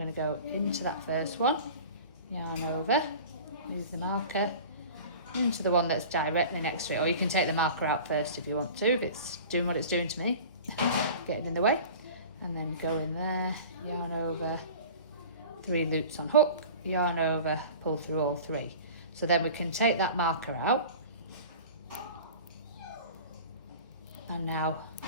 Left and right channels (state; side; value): inverted; both; correlation -0.39